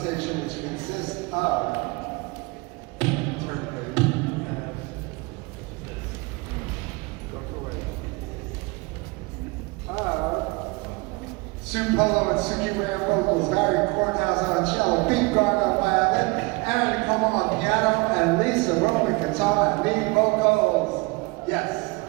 which consists of Sue Polo and Suki Ray on vocals, Barry Courthouse on cello, Pete Gardner on violin, Aaron Como on piano, and Lisa Roman guitar and lead vocals. Yes.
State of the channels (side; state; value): left; quieter; 26.5 dB